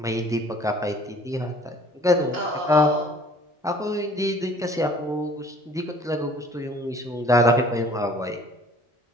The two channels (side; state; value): both; normal; correlation 0.52